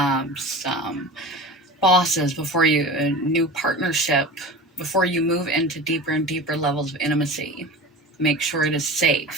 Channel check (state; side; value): normal; both; correlation 0.33